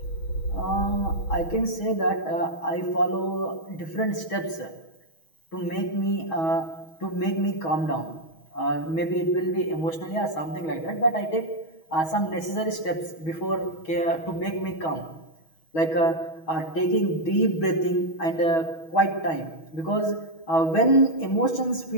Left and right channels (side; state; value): right; late; 6.2 ms